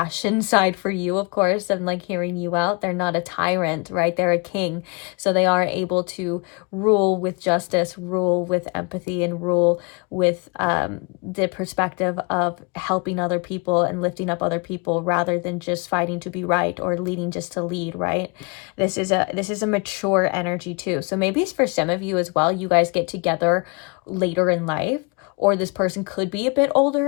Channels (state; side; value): quieter; right; 31.2 dB